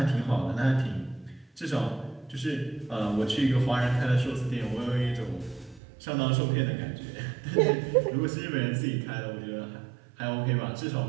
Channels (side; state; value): left; drops out; at 5.8 s